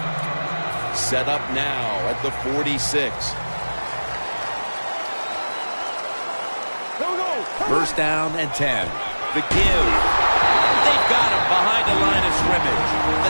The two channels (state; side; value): inverted; both; correlation -1.00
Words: Set up now at the 46. First down and 10. The give. They've got him behind the line of scrimmage. The